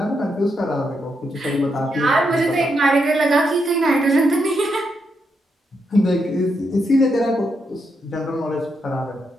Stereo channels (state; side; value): normal; both; correlation 0.81